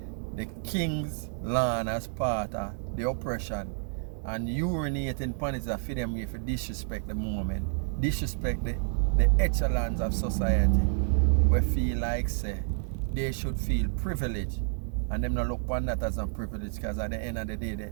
the king's land as part of the oppression and urinating upon it for them if you disrespect the moment, disrespect the echelons of society, we feel like say they should feel privileged, and them not look upon that as a privilege, because at the end of the day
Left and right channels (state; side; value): silent; left; digital silence